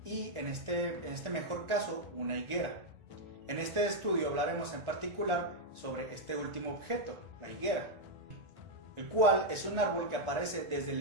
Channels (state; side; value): late; left; 1.4 ms